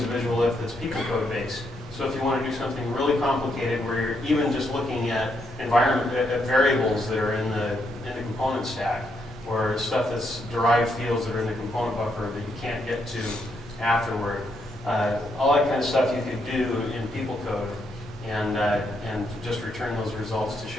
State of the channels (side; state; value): both; normal; correlation 0.77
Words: a visual if that's people code based. So if you want to do something really complicated where you're even just looking at variables that are in the component stack, or stuff that's derived fields that are in the component buffer that you can't get to afterward, all that kind of stuff you could do in people code and just return those results to